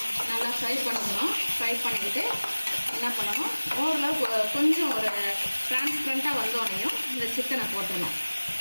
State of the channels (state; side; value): inverted; both; correlation -1.00